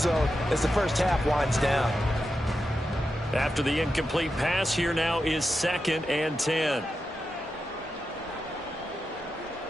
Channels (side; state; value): both; normal; correlation 0.89